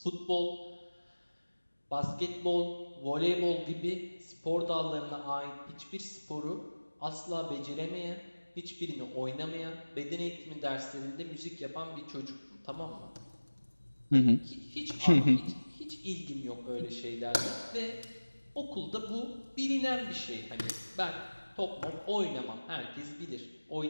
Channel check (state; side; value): inverted; both; correlation -1.00